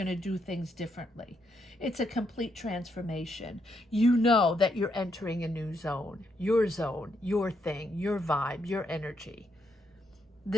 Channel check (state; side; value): normal; both; correlation 0.78